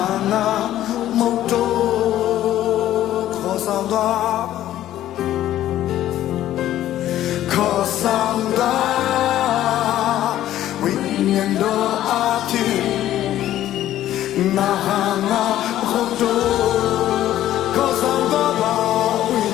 ာငါမဟုတ်တော့ခေါ်ဆောင်သွားခေါ်ဆောင်သွားဝိညာဉ်တော်အပြင်ငါဟာငါမဟုတ်တော့ခေါ်ဆောင်သွားပါဝိ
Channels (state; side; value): quieter; right; 12.9 dB